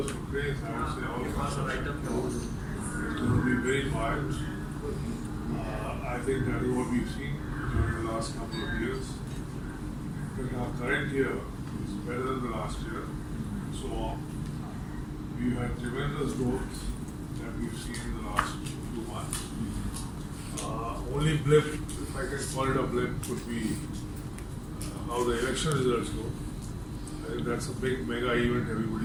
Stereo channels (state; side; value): identical; both; correlation 1.00